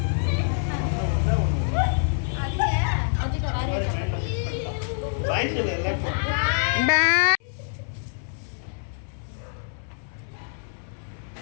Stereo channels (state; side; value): silent; right; 61 dB below the other